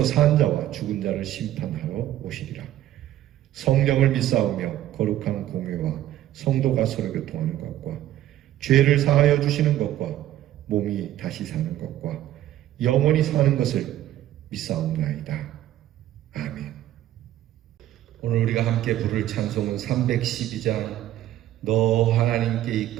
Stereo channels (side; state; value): left; quieter; 13.1 dB